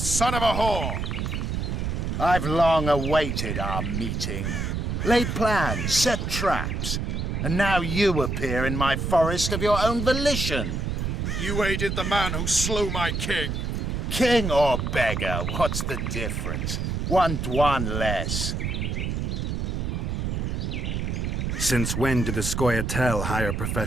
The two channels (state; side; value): noise; right; rumble, 1 dB below the sound